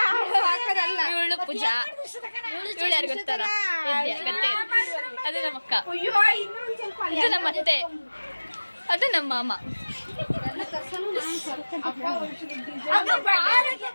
ಇವಳು ಪೂಜಾ. ಇವಳು ಯಾರು ಗೊತ್ತಾರ? ಗತ್ತೆ. ಅದು ನಮ್ಮ ಅಕ್ಕ, ಇದು ನಮ್ಮ ಅತ್ತೆ, ಅದು ನಮ್ಮ ಮಾಮ.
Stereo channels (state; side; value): inverted; both; correlation -1.00